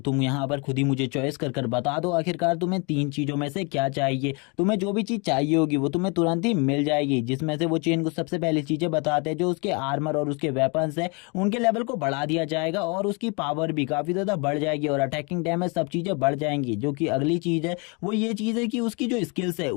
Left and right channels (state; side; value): quieter; right; 31.8 dB